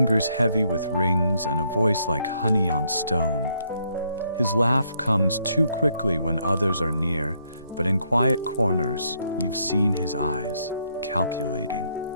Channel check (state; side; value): inverted; both; correlation -0.73